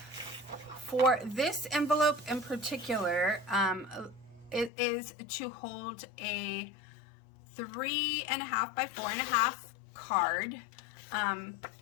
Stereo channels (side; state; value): right; drops out; at 4.7 s